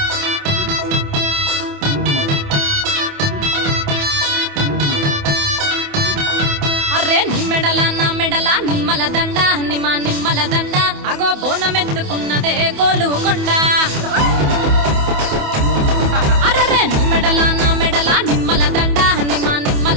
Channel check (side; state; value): left; late; 28 ms